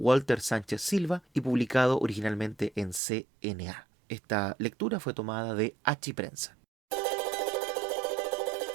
Sánchez Silva y publicado originalmente en CNA. Esta lectura fue tomada de Achiprensa.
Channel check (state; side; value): drops out; left; at 3.0 s